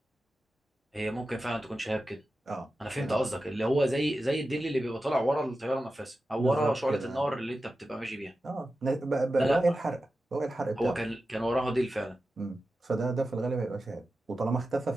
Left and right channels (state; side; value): normal; both; correlation 0.93